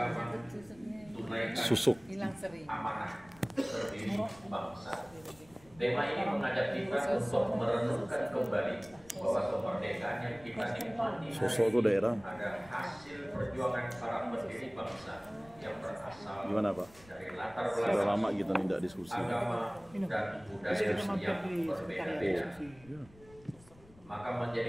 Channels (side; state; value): left; noise; rumble, 24 dB below the sound